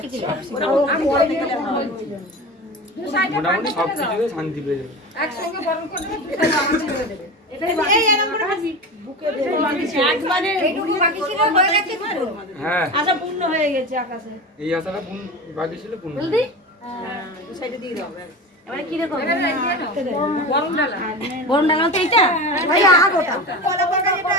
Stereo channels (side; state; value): both; normal; correlation 0.28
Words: শিখে যাবে। আমি বড় থেকে মোটামুটি সব কিছুতে শান্তি পেয়ে যাবে। একসঙ্গে বরণ করে দিলে আমার ছেড়ে দেবে। এই এরকম করে ভাবি বুকে দে। একবারে এইটুকু বাকি ছিল, হয়ে গেছে পুরো। হ্যাঁ, আশা পূর্ণ হয়ে গেছে আকাশে। এই আশাটা বাকি ছিল পূর্ণ। জলদি হ্যাঁ, দুই সাইডে দিয়ে দাও। এবারে কি দেখো? বরণ ডালা। বরণ ডালা তো এইটা? ভাই আগোটা। কলা পাকা যেটা